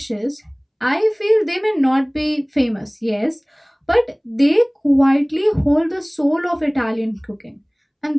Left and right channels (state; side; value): identical; both; correlation 1.00